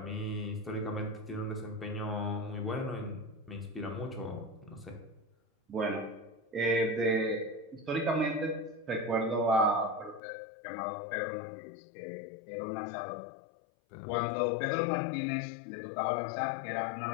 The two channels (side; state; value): right; drops out; at 10.2 s